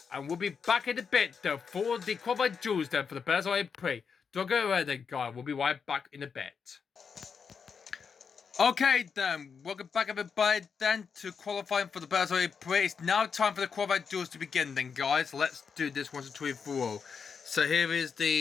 And we'll be back in a bit, though, for the qualified duels, then, for the Berzo E-Prix. Don't go away then, guys. We'll be right back in a bit. Okay, then. Welcome back, everybody, then, to qualifying for the Berzo E-Prix. It's now time for the qualified duels to begin, then, guys. Let's do this once and twice for all. So here is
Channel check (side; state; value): right; quieter; 6.1 dB